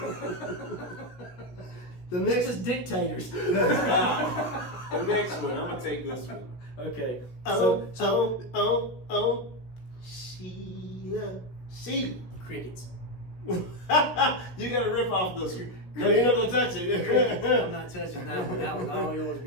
The They're next, just dictators. the next one. I'm gonna take this one. Okay. Oh, Sheila. Crickets. You gotta rip off this one. No, you're not gonna touch it. I'm not touching that one. That was all yours,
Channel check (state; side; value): late; right; 16 ms